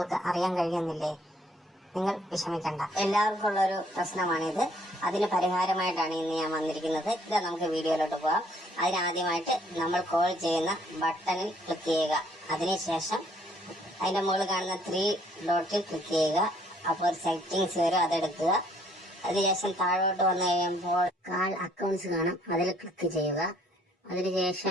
അറിയാൻ കഴിയുന്നില്ലേ? നിങ്ങൾ വിഷമിക്കണ്ട. എല്ലാവർക്കും ഉള്ളൊരു പ്രശ്നമാണിത്. അതിന് പരിഹാരമായിട്ടാണ് ഇന്ന് ഞാൻ വന്നിരിക്കുന്നത്. ഇതാ, നമുക്ക് വീഡിയോയിലോട്ട് പോകാം. അതിനാദ്യമായിട്ട് നമ്മൾ കോൾ ചെയ്യുന്ന ബട്ടണിൽ ക്ലിക്ക് ചെയ്യുക. അതിനുശേഷം അതിന്റെ മുകളിൽ കാണുന്ന 3 ഡോട്ടിൽ ക്ലിക്ക് ചെയ്യുക. അപ്പോൾ ഒരു സെറ്റിങ്സ് വരും, അതെടുക്കുക. അതിനുശേഷം താഴോട്ട് വന്നു കഴിയുമ്പോൾ കാൾ അക്കൗണ്ട്സ് കാണും, അതിൽ ക്ലിക്ക് ചെയ്യുക.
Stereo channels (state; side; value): normal; both; correlation 0.64